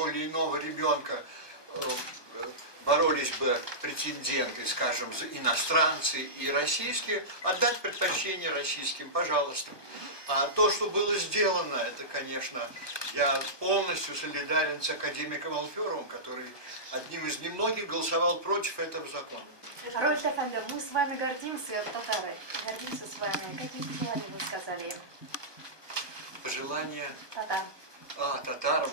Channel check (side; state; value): right; late; 1.2 ms